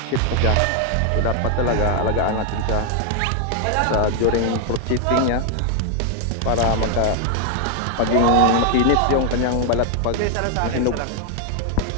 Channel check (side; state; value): both; different; correlation 0.00